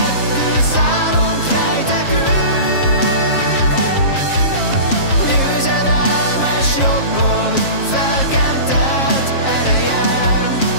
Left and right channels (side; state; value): right; late; 7.4 ms